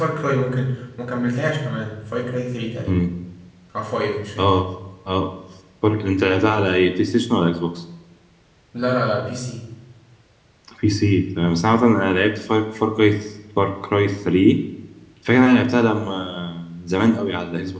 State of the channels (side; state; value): both; identical; correlation 1.00